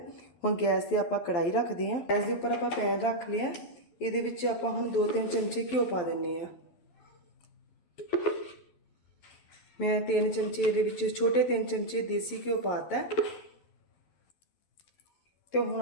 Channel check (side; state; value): right; late; 11 ms